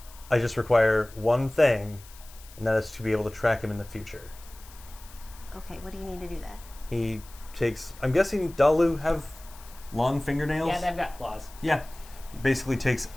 I just require one thing, and that is to be able to track him in the future. Okay, what do you need to do that? He takes. I'm guessing Dalu have long fingernails. Yeah, they've got claws. Yeah. He basically takes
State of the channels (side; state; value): left; noise; hiss, 21 dB below the sound